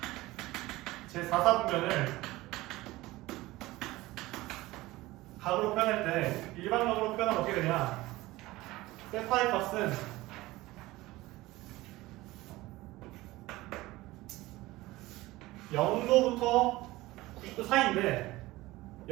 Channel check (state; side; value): quieter; left; 18.9 dB